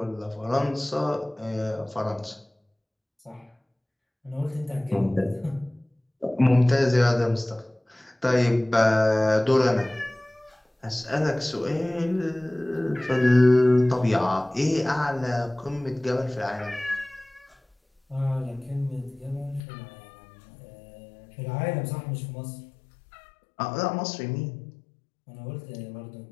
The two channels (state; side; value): drops out; right; at 19.6 s